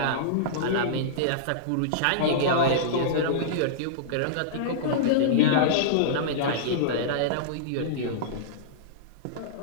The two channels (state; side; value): different; both; correlation -0.03